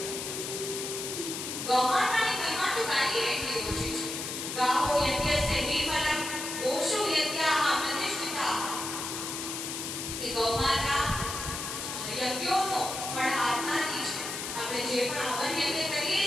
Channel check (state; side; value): noise; left; hiss, 5 dB below the sound